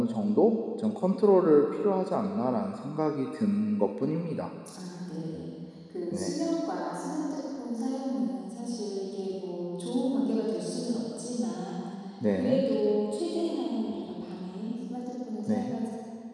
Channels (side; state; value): both; identical; correlation 1.00